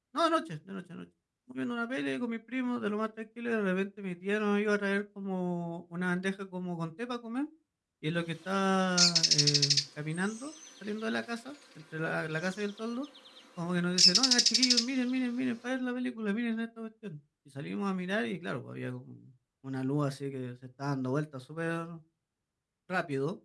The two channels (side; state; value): both; identical; correlation 1.00